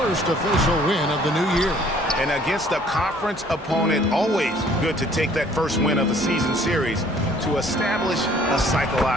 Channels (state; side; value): normal; both; correlation 0.58